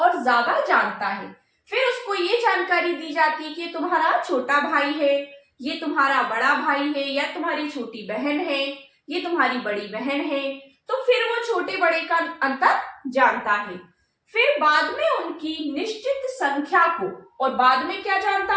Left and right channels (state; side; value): identical; both; correlation 1.00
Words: ज्यादा जानता है। फिर उसको ये जानकारी दी जाती है कि तुम्हारा छोटा भाई है, ये तुम्हारा बड़ा भाई है, या तुम्हारी छोटी बहन है, ये तुम्हारी बड़ी बहन है। तो फिर वो छोटे बड़े का अंतर जानता है। फिर बाद में उनकी निश्चित संख्या को, और बाद में क्या